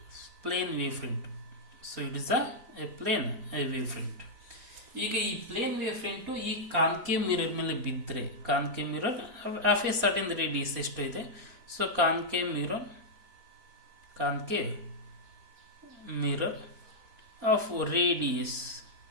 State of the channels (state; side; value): late; left; 4.3 ms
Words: plane wave front. So it is a plane wave front. ಈಗ ಈ ಪ್ಲೇನ್ ವೇವ್ ಫ್ರಂಟು ಈ ಕಾನ್ಕೇವ್ ಮಿರರ್ ಮೇಲೆ ಬಿದ್ದರೆ, concave mirror of a certain radius ಎಷ್ಟು ಇದೆ? So concave mirror of radius